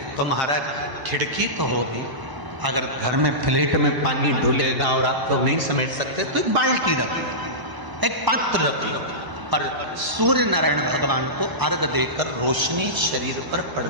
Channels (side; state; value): left; late; 1.0 ms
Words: तो महाराज खिड़की तो होगी, अगर घर में फ्लैट में पानी डूलेगा और आप तो नहीं समेट सकते तो एक बाल्टी रख लो, एक पात्र रख लो, पर सूर्य नारायण भगवान को अर्घ देकर रोशनी शरीर पर